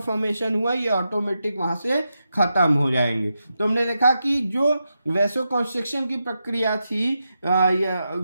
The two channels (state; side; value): inverted; both; correlation -0.87